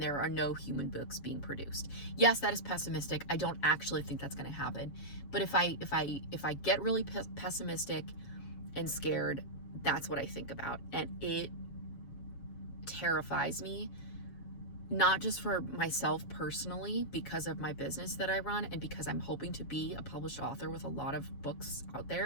are no human books being produced. Yes, that is pessimistic. I don't actually think that's going to happen. But if I get really pessimistic and scared, that's what I think about. And it terrifies me, not just for myself personally, because of my business that I run and because I'm hoping to be a published author with a lot of books out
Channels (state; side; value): late; right; 7.1 ms